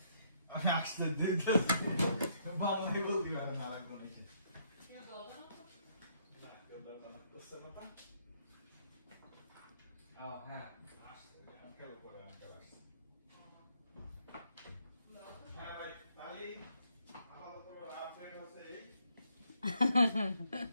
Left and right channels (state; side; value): inverted; both; correlation -0.71